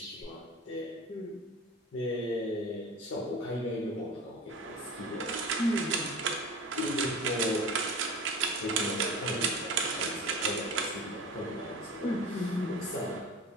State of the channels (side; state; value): both; normal; correlation 0.34